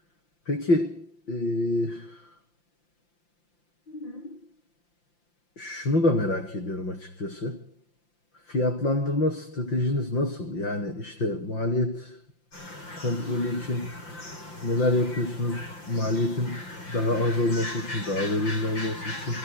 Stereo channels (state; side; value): late; right; 5.8 ms